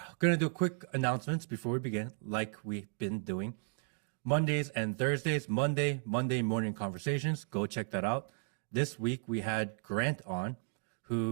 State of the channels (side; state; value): left; silent; 55 dB below the other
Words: going to do quick announcements before we begin, like we've been doing. Mondays and Thursdays, Monday morning conversations. Go check that out. This week we had Grant on,